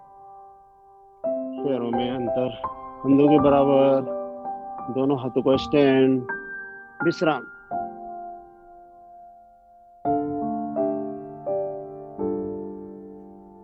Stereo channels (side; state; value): both; identical; correlation 1.00